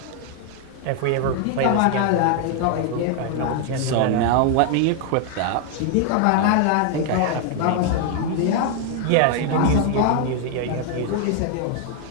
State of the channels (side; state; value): both; different; correlation 0.00